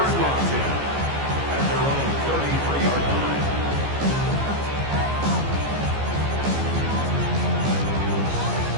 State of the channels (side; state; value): left; late; 14 ms